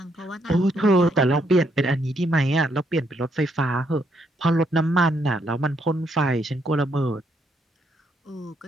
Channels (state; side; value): normal; both; correlation 0.74